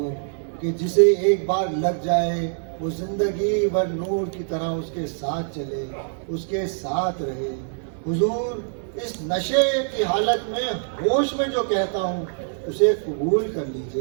کہ جسے ایک بار لگ جائے وہ زندگی بھر نور کی طرح اس کے ساتھ چلے، اس کے ساتھ رہے۔ حضور اس نشے کی حالت میں ہوش میں جو کہتا ہوں اسے قبول کر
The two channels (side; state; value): left; silent; digital silence